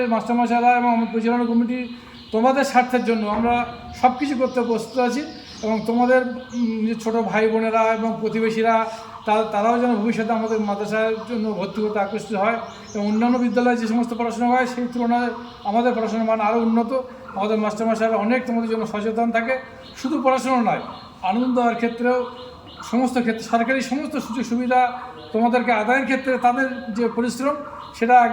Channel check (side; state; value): both; identical; correlation 1.00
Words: মাস্টারমশাইরা এবং আমার পরিচালনা কমিটি তোমাদের স্বার্থের জন্য আমরা সব কিছু করতে প্রস্তুত আছি এবং তোমাদের যে ছোটো ভাই বোনেরা এবং প্রতিবেশীরা তারাও যেন ভবিষ্যতে আমাদের মাদ্রাসার জন্য ভর্তি করতে আকৃষ্ট হয় এবং অন্যান্য বিদ্যালয়ে যে সমস্ত পড়াশোনা হয় সেই তুলনায় আমাদের পড়াশোনার মান আরও উন্নত। আমাদের মাস্টারমশাইরা অনেক তোমাদের জন্য সচেতন থাকে, শুধু পড়াশোনা নয়, আনন্দ দেওয়ার ক্ষেত্রেও সমস্ত ক্ষেত্রে সরকারি সমস্ত সুযোগ সুবিধা তোমাদেরকে আদায়ের ক্ষেত্রে তাদের যে পরিশ্রম সেটা